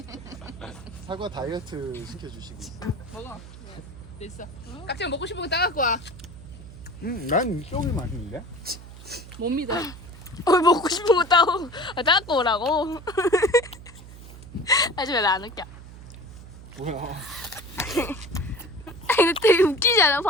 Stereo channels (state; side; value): noise; right; hum, 16 dB below the sound